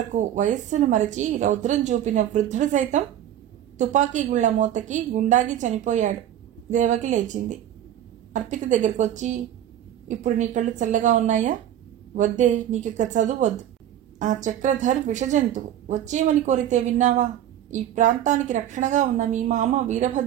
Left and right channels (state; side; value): quieter; left; 11.2 dB